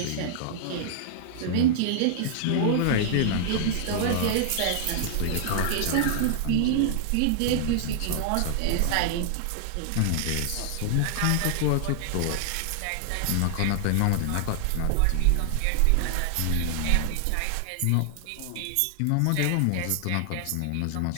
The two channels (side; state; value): both; different; correlation -0.01